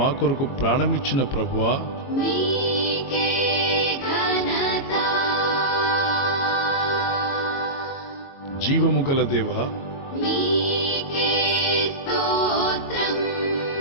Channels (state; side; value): late; right; 22 ms